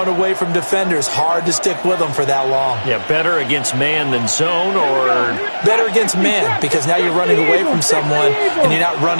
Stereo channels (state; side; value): inverted; both; correlation -1.00